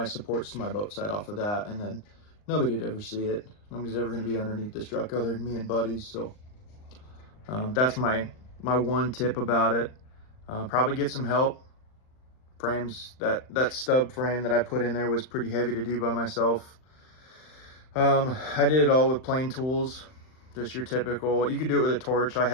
supports to my boat side off of that, and then nobody'd ever see it. Nobody's ever going to be underneath this truck other than me and buddies. So that's my one tip about it. Probably get some help. Frames, that stub frame that I put in there was pretty heavy to do by myself. I did it all with plain tools, just your typical. You could do it with a torch. I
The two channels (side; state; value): right; late; 39 ms